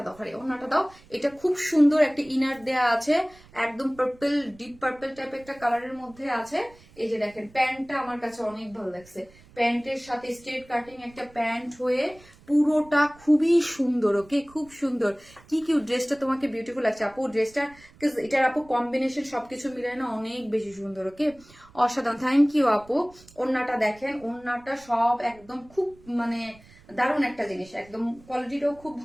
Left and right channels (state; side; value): noise; right; rumble, 25 dB below the sound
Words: দাও, ওনাটা দাও। এটা খুব সুন্দর একটা ইনার দেয়া আছে, একদম পার্পল, ডিপ পার্পল টাইপ একটা কালারের মধ্যে আছে। এই যে দেখেন প্যান্টটা আমার কাছে অনেক ভালো লাগছে, প্যান্টের সাথে স্ট্রেট কাটিং একটা প্যান্ট হয়ে পুরোটা খুবই সুন্দর। ওকে, খুব সুন্দর। কি কিউ ড্রেসটা তোমাকে বিউটিফুল লাগছে আপু, ড্রেসটা এটার আপু কম্বিনেশন সবকিছু মিলে না অনেক বেশি সুন্দর। ওকে, অসাধারণ, থ্যাংক ইউ আপু। ওড়নাটা দেখেন, ওড়নাটা সব একদম খুব মানে দারুণ একটা জিনিস, একদম কোয়ালিটিটাও খুব